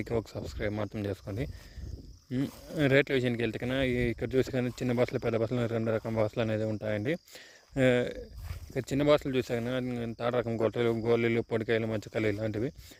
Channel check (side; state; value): both; identical; correlation 1.00